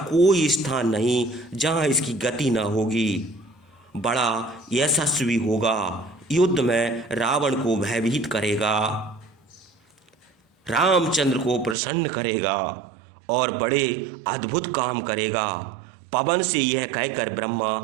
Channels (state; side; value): drops out; left; at 11.8 s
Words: कोई स्थान नहीं जहां इसकी गति न होगी। बड़ा यशस्वी होगा, युद्ध में रावण को भयभीत करेगा, रामचंद्र को प्रसन्न करेगा और बड़े अद्भुत काम करेगा। पवन से यह कहकर ब्रह्मा